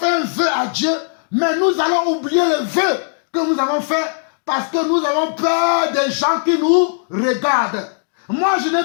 un vœu à Dieu, mais nous allons oublier le vœu que nous avons fait parce que nous avons peur des gens qui nous regardent. Moi, je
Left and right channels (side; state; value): right; silent; digital silence